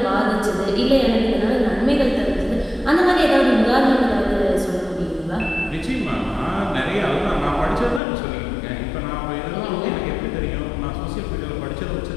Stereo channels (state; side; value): drops out; right; at 8.0 s